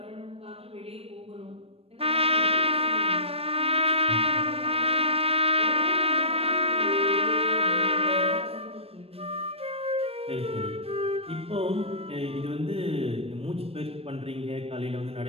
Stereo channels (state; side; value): late; left; 0.28 ms